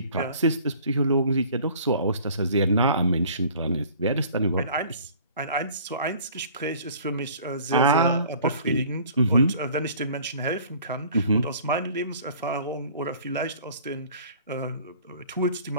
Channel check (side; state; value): both; inverted; correlation -0.50